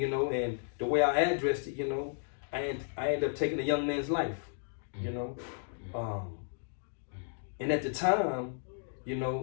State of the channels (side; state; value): right; silent; digital silence